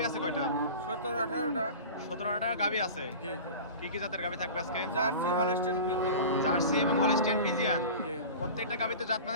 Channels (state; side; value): inverted; both; correlation -0.35